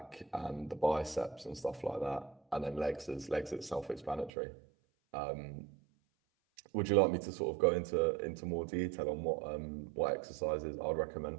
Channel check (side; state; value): left; drops out; at 4.3 s